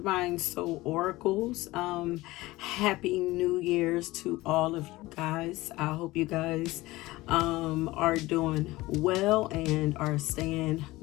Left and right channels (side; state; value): right; quieter; 19.2 dB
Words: Soul Oracles. Happy New Year's to all of you guys. I hope you guys are doing well and are staying